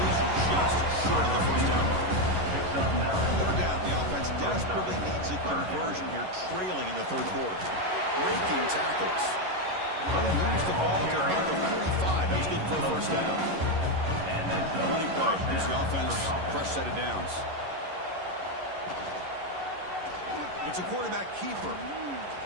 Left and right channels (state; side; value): late; left; 11 ms